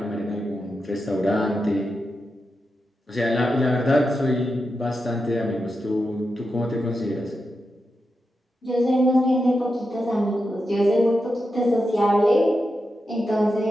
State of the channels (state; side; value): normal; both; correlation 0.88